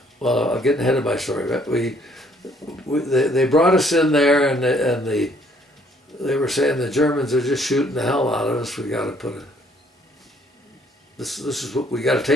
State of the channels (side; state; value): both; normal; correlation 0.63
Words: I'm getting ahead of my story, but they brought us in there, and they were saying the Germans are just shooting the hell out of us. We got to put this is what we got to